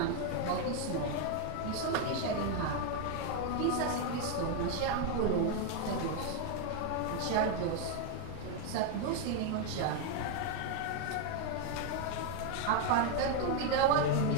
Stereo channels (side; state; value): both; different; correlation 0.01